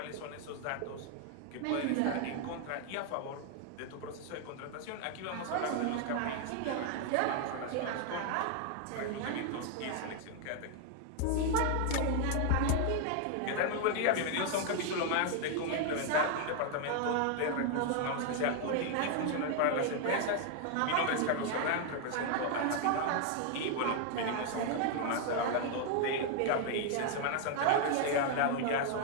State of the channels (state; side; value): different; both; correlation 0.00